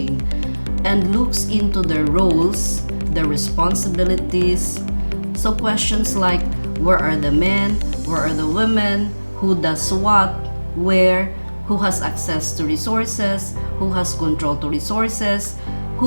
and looks into their roles, their responsibilities. So questions like, where are the men, where are the women, who does what, where, who has access to resources, who has control to resources,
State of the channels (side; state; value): both; inverted; correlation -1.00